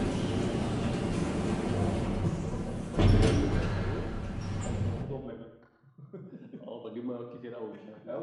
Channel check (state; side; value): identical; both; correlation 1.00